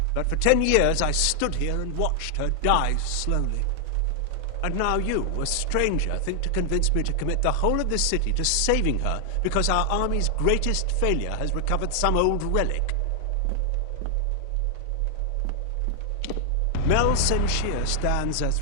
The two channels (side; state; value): both; different; correlation 0.00